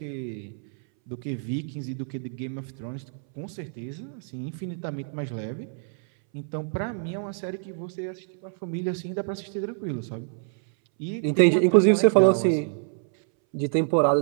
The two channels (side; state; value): left; silent; 61 dB below the other